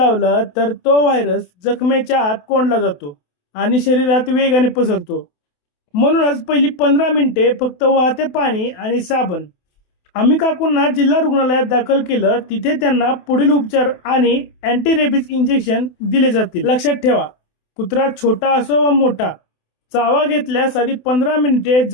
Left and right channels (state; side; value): late; right; 28 ms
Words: तर तो व्हायरस जखमेच्या आत कोंडला जातो आणि शरीरात वेगाने पसरतो। म्हणूनच पहिली 15 मिनिटे फक्त वाहते पाणी आणि साबण। आम्ही काकूंना जिल्हा रुग्णालयात दाखल केलं, तिथे त्यांना पुढील उपचार आणि अँटी रेबीज इंजेक्शन दिले जातील। लक्षात ठेवा, कुत्रा छोटा असो वा मोठा, चावा घेतल्यास आधी 15 मिनिटे